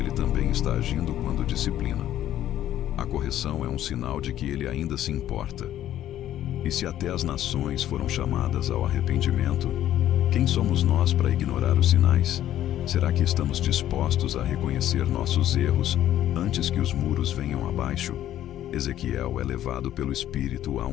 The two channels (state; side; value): quieter; right; 12.2 dB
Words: também está agindo quando disciplina. A correção é um sinal de que Ele ainda se importa. E se até as nações foram chamadas ao arrependimento, quem somos nós para ignorar os sinais? Será que estamos dispostos a reconhecer nossos erros antes que os muros venham abaixo? Ezequiel é levado pelo Espírito a